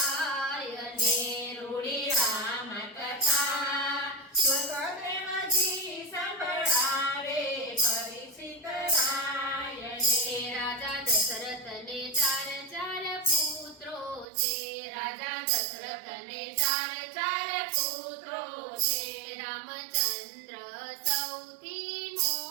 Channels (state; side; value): drops out; left; at 14.2 s